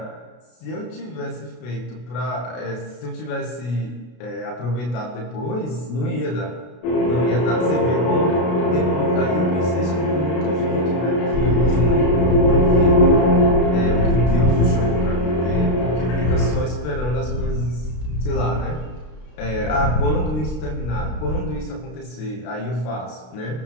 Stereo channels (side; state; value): right; late; 33 ms